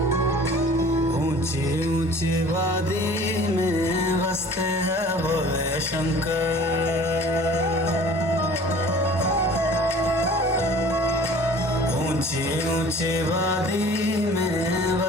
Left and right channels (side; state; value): both; normal; correlation 0.47